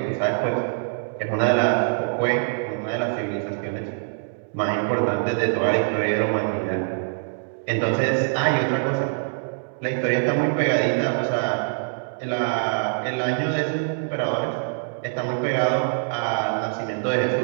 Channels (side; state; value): left; silent; digital silence